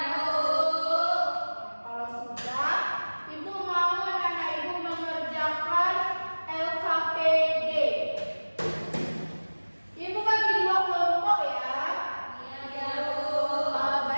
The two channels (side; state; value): both; inverted; correlation -1.00